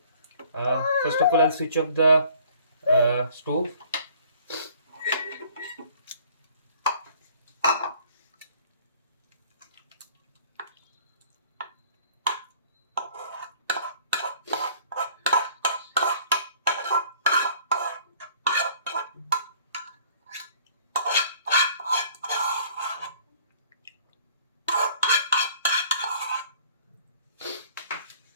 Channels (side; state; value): both; inverted; correlation -0.55